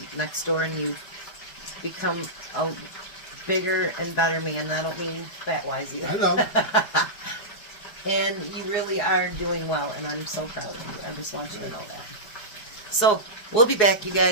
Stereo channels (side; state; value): right; late; 4.8 ms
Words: next door, and you've become a bigger and better man. And I don't mean fat-wise either. I know. And you really are doing well, and I'm so proud of you. I just want you to know that. So, We'll be back, you